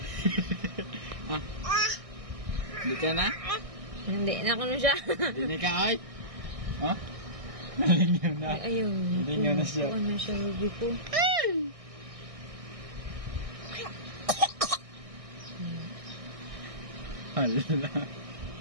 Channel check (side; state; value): left; late; 1.6 ms